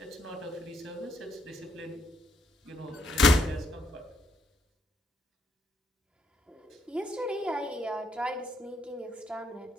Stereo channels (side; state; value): both; normal; correlation 0.74